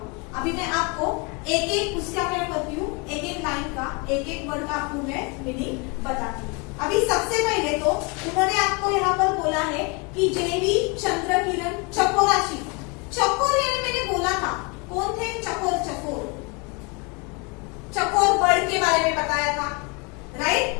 अभी मैं आपको एक एक उसका क्या करती हूँ, एक एक लाइन का, एक एक वर्ड का आपको मैं मीनिंग बताती हूँ। अभी सबसे पहले तो उन्होंने आपको यहाँ पर बोला है कि जेवी चंद्रकिरण चकोराशी। चकोर यानी मैंने बोला था कौन थे चकोर, चकोर चकोर बर्ड के बारे में बताया था,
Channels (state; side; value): quieter; right; 30.3 dB